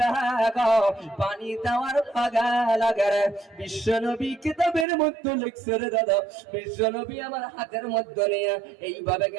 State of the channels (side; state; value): left; drops out; at 4.9 s